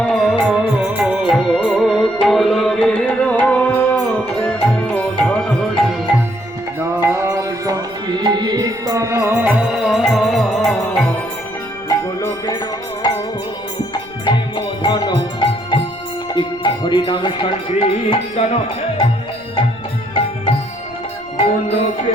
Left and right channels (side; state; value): left; noise; rumble, 25 dB below the sound